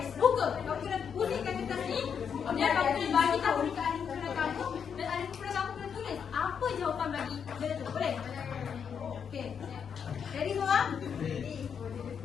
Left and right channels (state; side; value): quieter; right; 7.2 dB